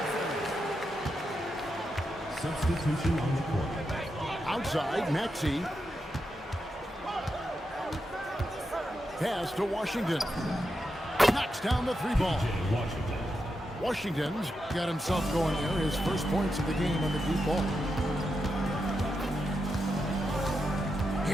Substitution on the court. Outside, Maxey. Pass to Washington. Knocks down the three ball. Washington's got himself going there. His first points of the game on the deep ball.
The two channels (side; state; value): both; normal; correlation 0.86